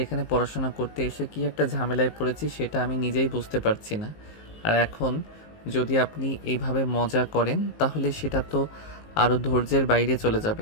এখানে পড়াশোনা করতে এসে কি একটা ঝামেলায় পড়েছি সেটা আমি নিজেই বুঝতে পারছি না। আর এখন যদি আপনি এইভাবে মজা করেন তাহলে সেটা তো আরও ধৈর্যের বাইরে চলে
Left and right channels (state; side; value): late; right; 19 ms